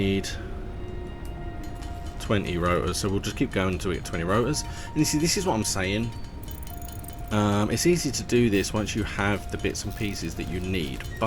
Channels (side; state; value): both; identical; correlation 1.00